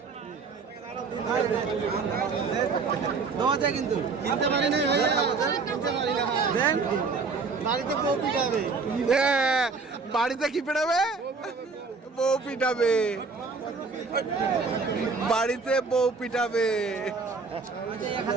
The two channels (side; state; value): left; quieter; 4.5 dB